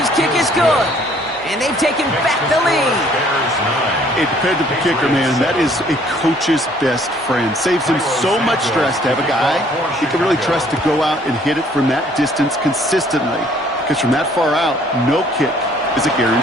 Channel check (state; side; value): normal; both; correlation 0.60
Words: kick is good. And they've taken back the lead. A dependable kicker, man. That is a coach's best friend. Saves him so much stress to have a guy he can really trust to go out and hit it from that distance consistently. Because from that far out, no kick is a